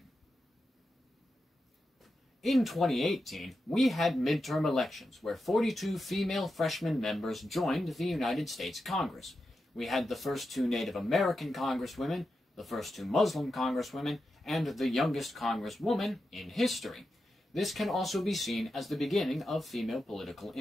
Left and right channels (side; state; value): both; normal; correlation 0.89